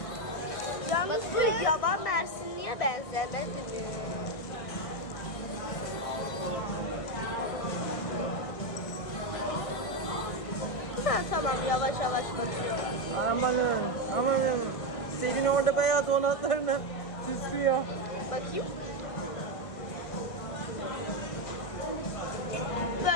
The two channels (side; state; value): right; late; 1.6 ms